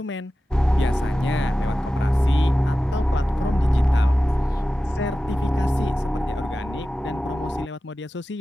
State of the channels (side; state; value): both; normal; correlation 0.94